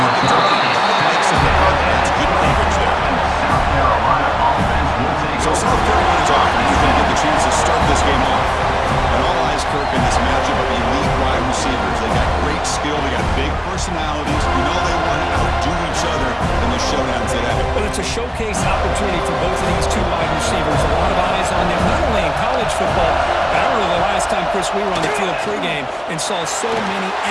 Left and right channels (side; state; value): both; identical; correlation 1.00